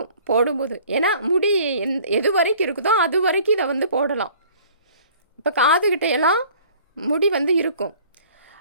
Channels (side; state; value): both; inverted; correlation -0.52